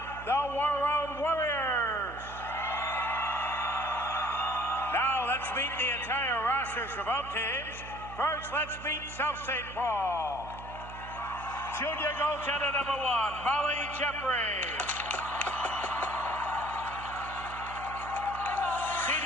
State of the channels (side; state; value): right; noise; hum, 13 dB below the sound